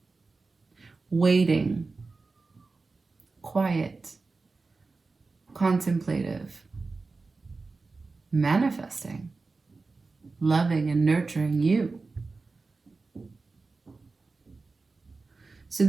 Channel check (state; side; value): quieter; left; 3.9 dB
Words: waiting, quiet, contemplative, manifesting, loving and nurturing you. So